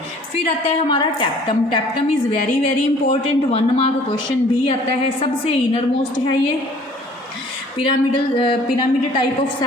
फिर आता है हमारा tapetum. Tapetum is very very important, 1 mark question भी आता है। सबसे इनर मोस्ट है ये, पिरामिड टाइप ऑफ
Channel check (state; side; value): normal; both; correlation 0.53